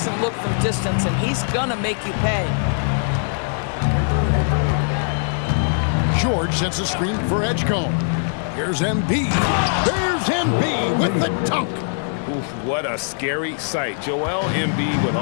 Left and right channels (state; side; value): silent; right; 56 dB below the other